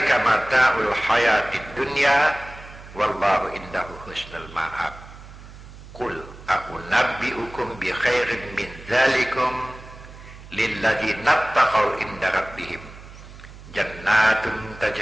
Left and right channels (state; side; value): noise; right; hum, 17 dB below the sound